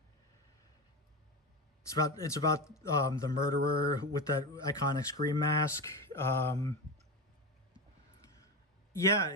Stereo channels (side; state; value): both; normal; correlation 0.20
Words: about the murderer with that iconic Scream mask. Yeah,